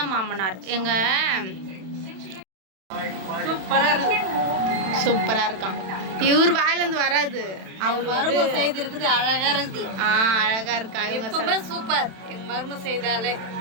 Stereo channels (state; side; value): late; left; 31 ms